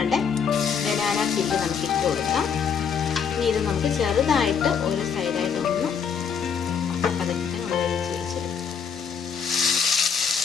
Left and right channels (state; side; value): quieter; right; 6.7 dB